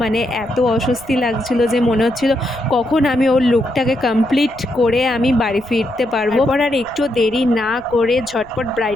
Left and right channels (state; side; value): noise; left; rumble, 24 dB below the sound